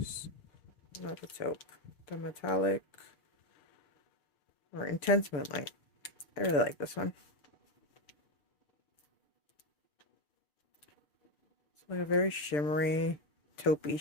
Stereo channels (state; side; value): late; right; 6.8 ms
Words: not the taupe, the metallic or intense moonlight. I really like this one. It's like a very shimmery taupey